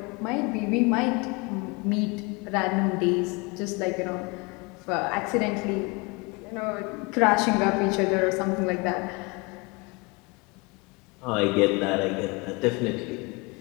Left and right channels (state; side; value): quieter; right; 27.6 dB